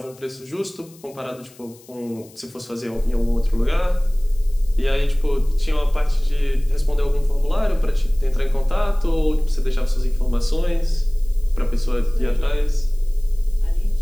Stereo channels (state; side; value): noise; left; hiss, 26 dB below the sound